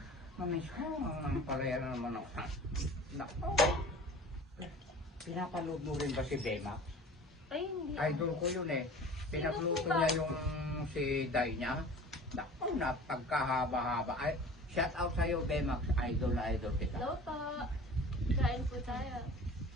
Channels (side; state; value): both; normal; correlation 0.42